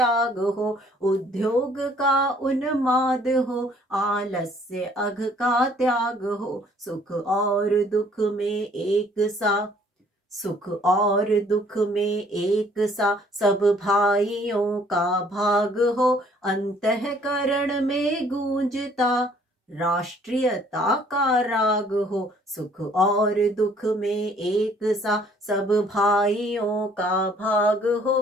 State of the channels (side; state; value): both; normal; correlation 0.60